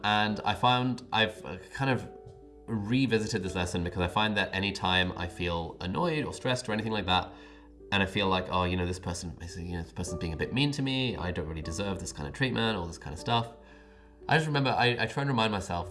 I found I've kind of revisited this lesson because I find that anytime I feel annoyed or stressed or anything like that, and I feel like, oh, this person's being a bit mean to me, I don't really deserve this kind of treatment, all this kind of stuff. I just remember, I try and remind myself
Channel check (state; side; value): identical; both; correlation 1.00